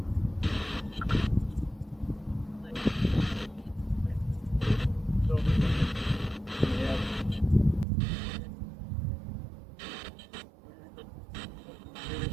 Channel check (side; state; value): left; drops out; at 7.9 s